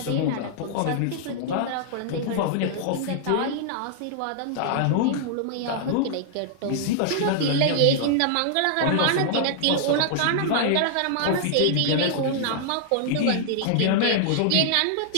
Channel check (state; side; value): different; both; correlation -0.01